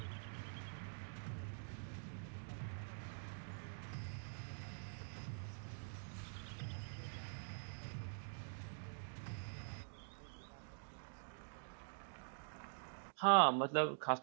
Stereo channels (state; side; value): silent; left; digital silence